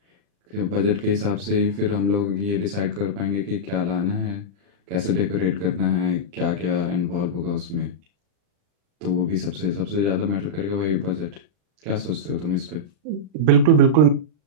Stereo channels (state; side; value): late; left; 40 ms